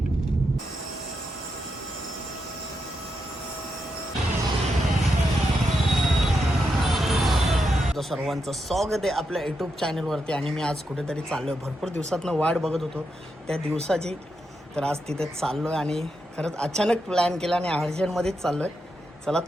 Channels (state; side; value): normal; both; correlation 0.84